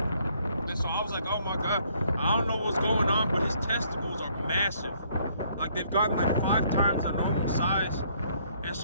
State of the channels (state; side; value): inverted; both; correlation -0.65